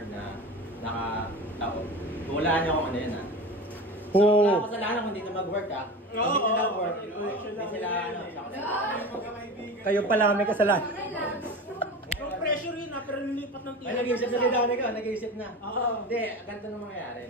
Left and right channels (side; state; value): both; normal; correlation 0.30